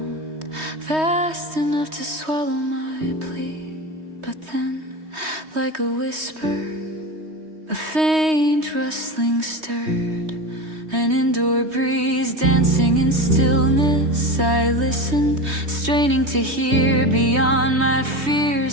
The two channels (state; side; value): late; left; 3.2 ms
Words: vast enough to swallow my plea. But then, like a whisper, A faint rustling stirred, an indoor breeze dancing in stillness. I listened, straining to hear beyond my fears,